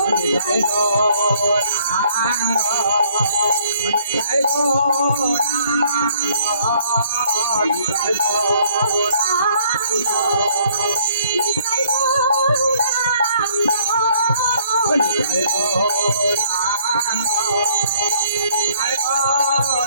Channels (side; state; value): both; inverted; correlation -0.62